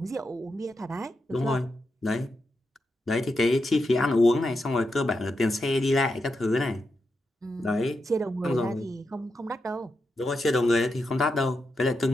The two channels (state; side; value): normal; both; correlation 0.86